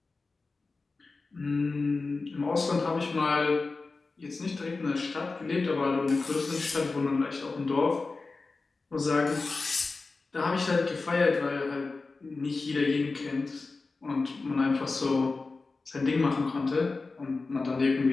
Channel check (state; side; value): quieter; right; 3.8 dB